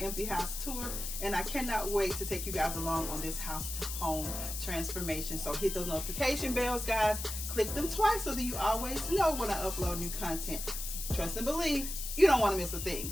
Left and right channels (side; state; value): left; noise; hiss, 6 dB below the sound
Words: house tour, and I cannot wait to take you guys along on this house to home transformation. So hit those notification bells, guys. Click them twice so that you always know when I upload new content. Trust and believe, you don't want to miss a thing.